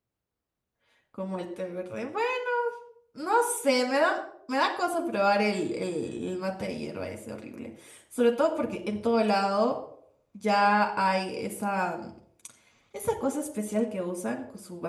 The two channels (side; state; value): both; identical; correlation 1.00